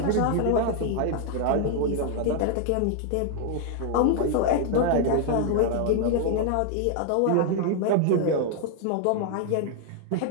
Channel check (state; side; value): different; both; correlation 0.00